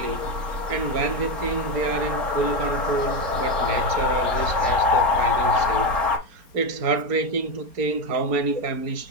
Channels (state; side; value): late; left; 4.3 ms